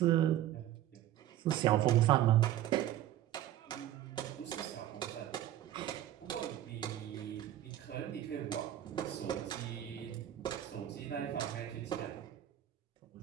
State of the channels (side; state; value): left; quieter; 12.5 dB